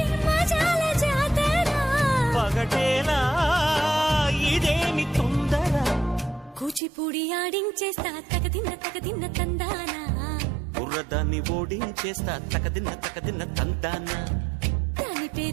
మజాల జాతర పగటేలా ఇదేమి తొందర కూచిపూడి ఆడించేస్తా తగదిన్న తందానా బుర్రదాన్ని ఓడించేస్తా తగదిన్న తందానా దాని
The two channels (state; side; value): drops out; left; at 6.8 s